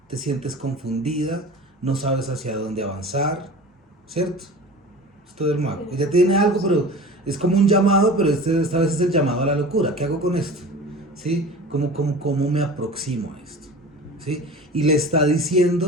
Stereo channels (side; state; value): both; normal; correlation 0.37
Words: te sientes confundida, no sabes hacia dónde avanzar, ¿cierto? Esto del mago. Ella tiene algo, pero es como un llamado, pero esta vez es el llamado a la locura. ¿Qué hago con esto? ¿Sí? ¿Cómo me aproximo a esto? ¿Sí? Y le está